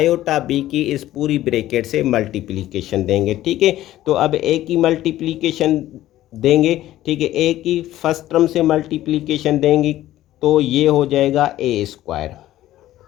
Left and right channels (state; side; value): quieter; right; 14.2 dB